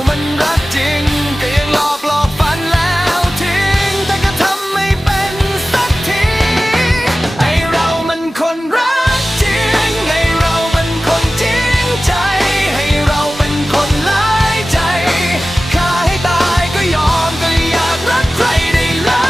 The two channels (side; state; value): both; normal; correlation 0.96